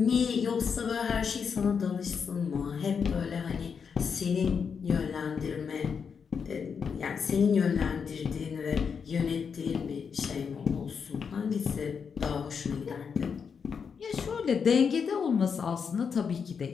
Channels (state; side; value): quieter; right; 6.3 dB